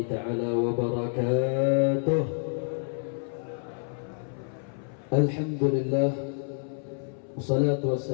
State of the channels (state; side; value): silent; right; 59 dB below the other